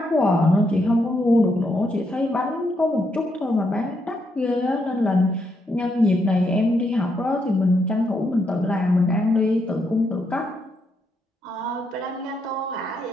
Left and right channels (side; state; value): both; normal; correlation 0.78